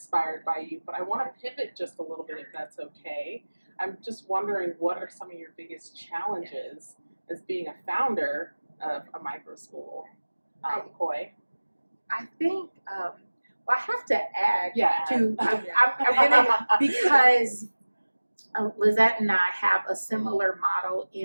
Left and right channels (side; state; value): both; inverted; correlation -1.00